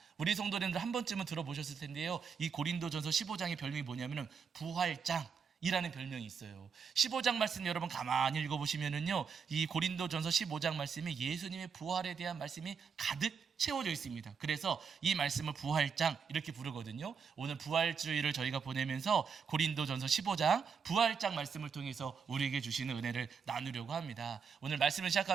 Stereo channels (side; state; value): left; quieter; 6.1 dB